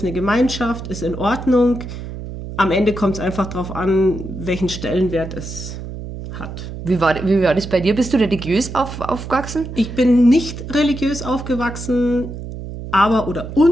eine Gemeinschaft, ist in Ordnung. Am Ende kommt es einfach darauf an, welchen Stellenwert es hat. Wie war das bei dir? Bist du religiös aufgewachsen? Ich bin nicht religiös aufgewachsen,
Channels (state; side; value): noise; right; hum, 9 dB below the sound